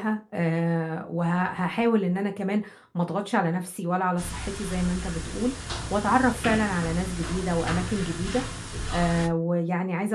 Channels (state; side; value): identical; both; correlation 1.00